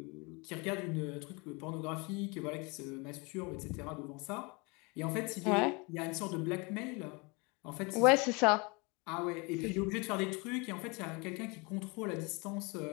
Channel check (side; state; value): right; quieter; 28.5 dB